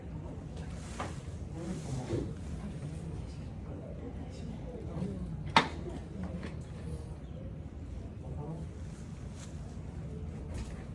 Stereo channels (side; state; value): both; identical; correlation 1.00